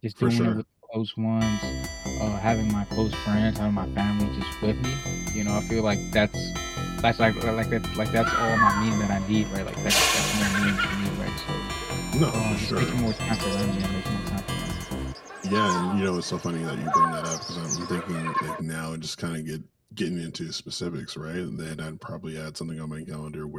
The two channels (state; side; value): identical; both; correlation 1.00